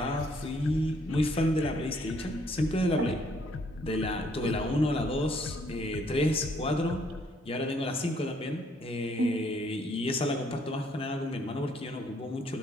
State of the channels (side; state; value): both; normal; correlation 0.67